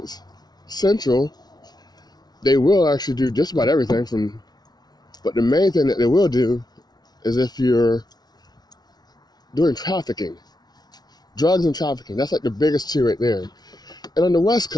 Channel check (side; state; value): right; late; 0.19 ms